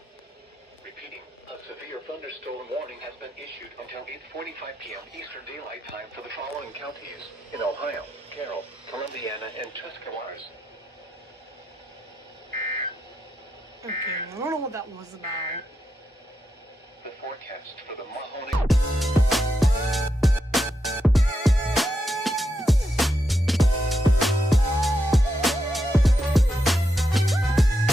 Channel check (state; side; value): normal; both; correlation 0.84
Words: Repeating, a severe thunderstorm warning has been issued until 8:45 p.m. Eastern Daylight Time for the following counties in Ohio: Carroll, Columbiana, and Tuscarawas. Okay, I don't know what that was about. The forecast for the Mahoney...